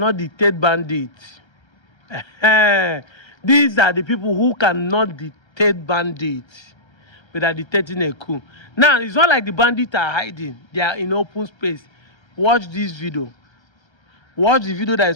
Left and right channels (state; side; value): late; right; 1.3 ms